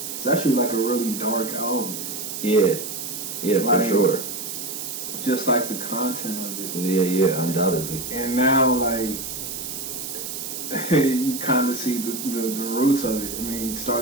it's actually like a really dark album. Yeah, like, for sure. Just like the content of it. Yeah, undoubtedly. And now, like, you kind of see the roots of it. I mean, it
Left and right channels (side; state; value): right; noise; hiss, 6 dB below the sound